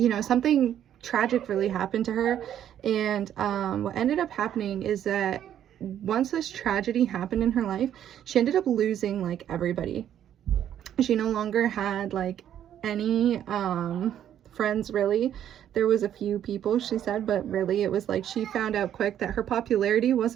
something tragic really happened to her. And what ended up happening is that once this tragedy happened in her life, she ended up losing like everybody. She no longer had like any friends, really. There was a few people, she said, but really it was like she found out quick that her popularity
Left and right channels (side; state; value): left; quieter; 10.4 dB